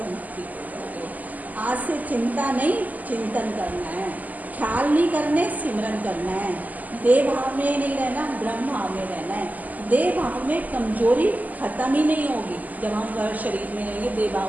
हो जाओगे। आज से चिंता नहीं, चिंतन करना है, ख्याल नहीं करने, सिमरन करना है। देह भाव में नहीं रहना, ब्रह्म भाव में रहना है। देह भाव में कमजोरी खत्म ही नहीं होगी। जब हम शरीर में रहेंगे, देह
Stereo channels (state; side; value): late; left; 0.080 ms